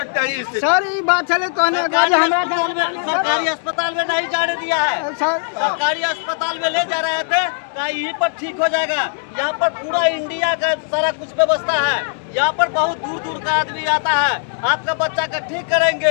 हैं सर, ये बात चले सरकारी अस्पताल में नहीं जाने दिया है। सरकारी अस्पताल में ले जा रहे थे, कहा यहीं पर ठीक हो जाएगा। यहाँ पर पूरा इंडिया का सारा कुछ व्यवस्था है। यहाँ पर बहुत दूर दूर का आदमी आता है, आपका बच्चा का ठीक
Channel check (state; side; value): silent; right; digital silence